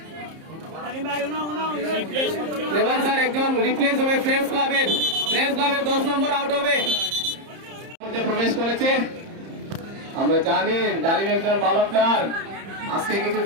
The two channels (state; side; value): late; left; 30 ms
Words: এবার স্যার একজন রিপ্লেস হবে ফ্রেন্ডস ক্লাবের 10 নম্বর আউট হবে প্রবেশ করেছে আমরা জানি ডালিম একজন ভালো প্লেয়ার আজকে কিছু